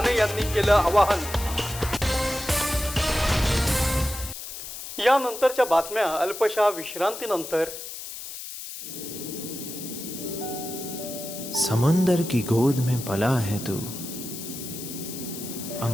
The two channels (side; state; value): left; noise; hiss, 10 dB below the sound